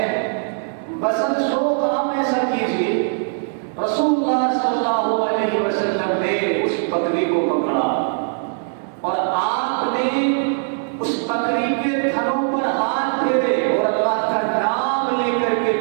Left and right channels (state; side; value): silent; left; digital silence